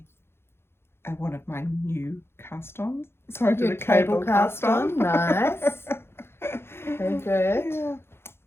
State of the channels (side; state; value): right; late; 0.12 ms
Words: one of my new cast-ons. So I did a cable cast-on. Nice. Very good. Yeah.